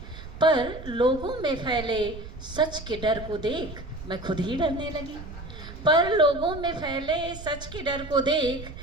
पर लोगों में फैले सच के डर को देख मैं खुद ही डरने लगी। पर लोगों में फैले सच के डर को देख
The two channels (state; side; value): noise; right; rumble, 12 dB below the sound